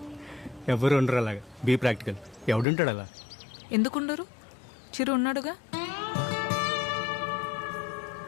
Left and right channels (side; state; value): right; drops out; at 2.7 s